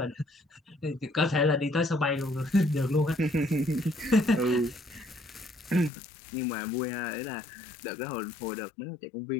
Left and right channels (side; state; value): right; drops out; at 5.9 s